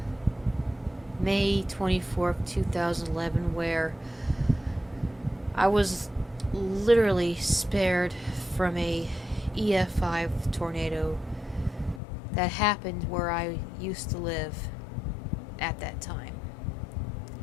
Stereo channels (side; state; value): right; drops out; at 12.0 s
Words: May 24th, 2011, where I was literally spared from a EF5 tornado that happened where I used to live at that time.